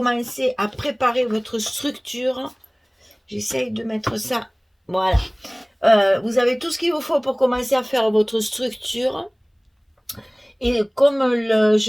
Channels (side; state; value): both; identical; correlation 1.00